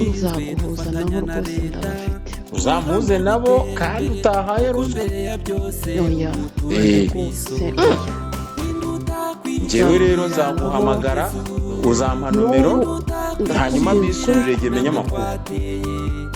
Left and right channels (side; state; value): both; identical; correlation 1.00